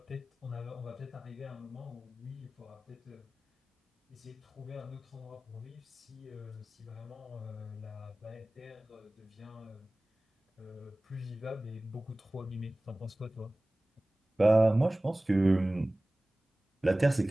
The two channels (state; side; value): normal; both; correlation 0.98